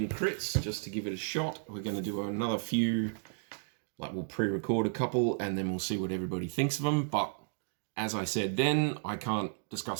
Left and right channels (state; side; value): silent; left; digital silence